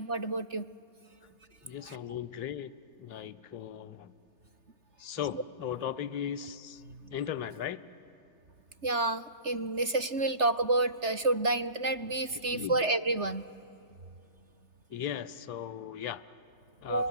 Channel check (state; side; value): late; left; 3.3 ms